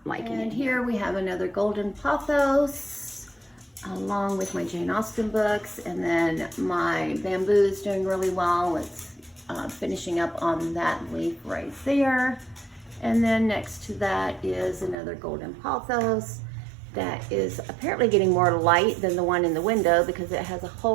liking it. And here we have another golden pothos, along with my Jane Austen books, and then my bamboo is doing really well. It's finishing up on that leaf right there. And then next to that is another golden pothos that is apparently getting more light than the one in the window because it has a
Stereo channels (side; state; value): left; drops out; at 15.0 s